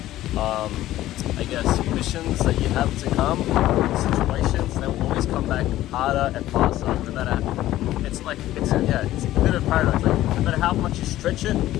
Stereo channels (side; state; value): right; quieter; 14.6 dB